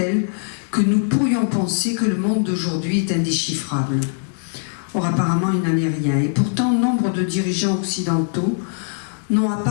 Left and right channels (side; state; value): right; silent; digital silence